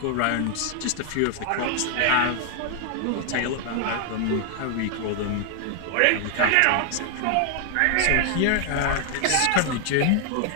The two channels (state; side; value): different; both; correlation 0.00